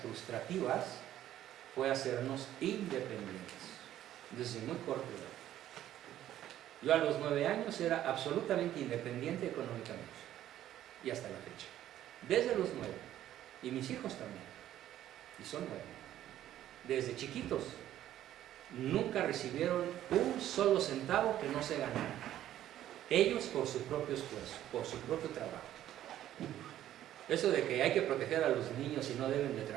fue hacernos independientes, desde muy corta edad. Yo a los 9 años era absolutamente independiente económicamente, y hasta la fecha. Desde los 9, y mis hijos también, y son 9. Desde chiquitos, nunca recibieron un solo centavo que no se ganara. Ellos por su propio esfuerzo, por su propio trabajo. Eso de que hay que proteger a los niños y no deben de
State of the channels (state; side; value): quieter; left; 12.4 dB